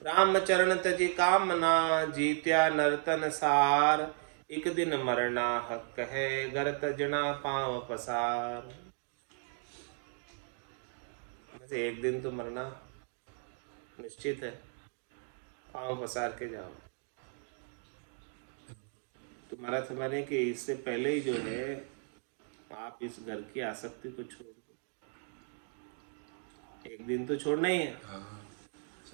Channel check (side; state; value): left; silent; 54 dB below the other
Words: राम चरण तजी कामना जीत्या नर्तन सार, एक दिन मरना हक है, गर तजना पांव पसार। एक दिन तो मरना निश्चित है, पांव पसार के जाओ। तुम्हारा समझने कि इससे पहले ही जो है आप इस घर की आसक्ति को छोड़ दो, एक दिन तो छोड़ना ही है।